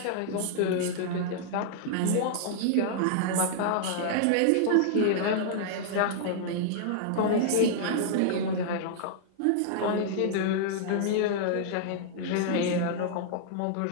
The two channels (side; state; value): both; different; correlation -0.01